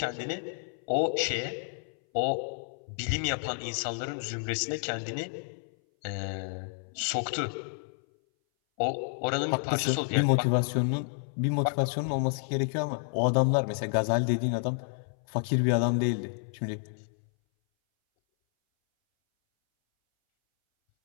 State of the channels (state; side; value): silent; right; 58 dB below the other